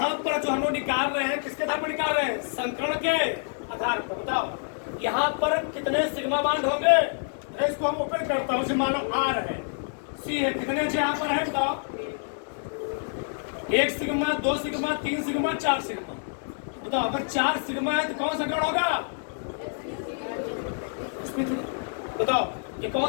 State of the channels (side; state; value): right; silent; digital silence